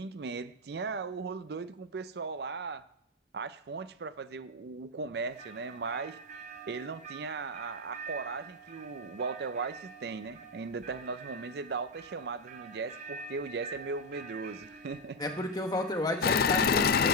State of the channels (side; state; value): both; normal; correlation 0.05